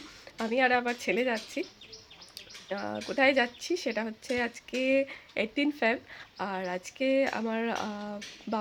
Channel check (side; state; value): both; identical; correlation 1.00